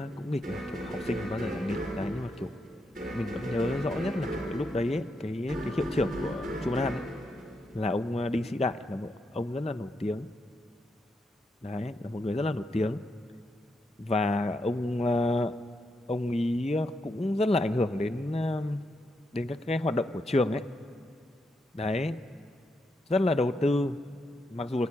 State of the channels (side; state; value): both; normal; correlation 0.81